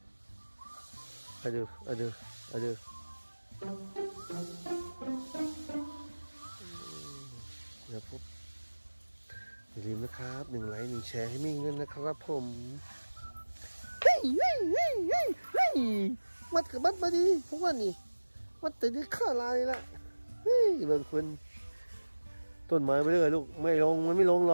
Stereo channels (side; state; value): both; inverted; correlation -1.00